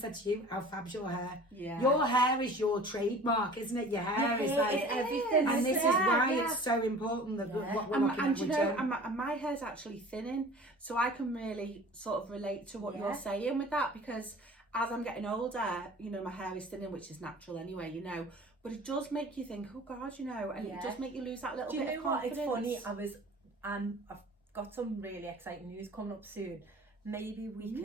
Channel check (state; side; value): normal; both; correlation 0.43